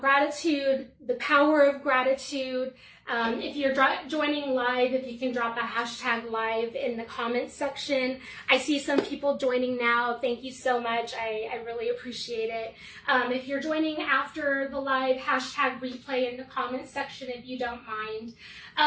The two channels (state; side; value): identical; both; correlation 1.00